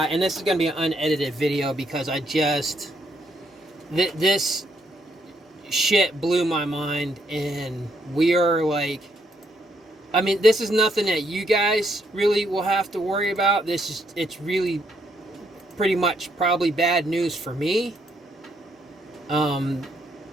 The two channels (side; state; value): both; normal; correlation 0.74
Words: and this is going to be an unedited video because this shit blew my mind, and we are like. I mean, this is nothing that you guys really will have to worry about. It's really pretty much probably bad news for me. When